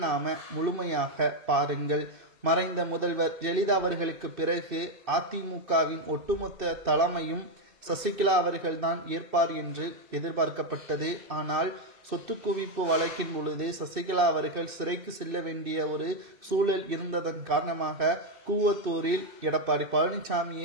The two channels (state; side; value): late; left; 2.6 ms